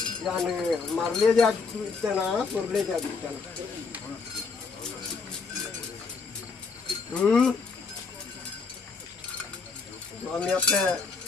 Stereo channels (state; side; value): quieter; right; 4.7 dB